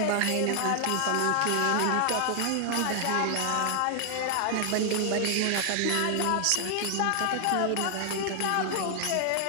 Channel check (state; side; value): different; both; correlation 0.00